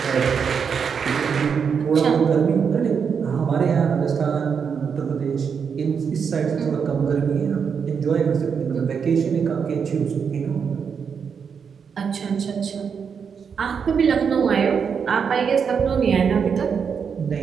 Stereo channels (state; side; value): quieter; left; 6.5 dB